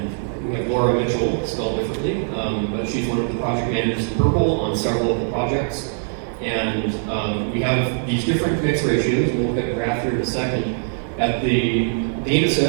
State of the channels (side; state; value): left; silent; digital silence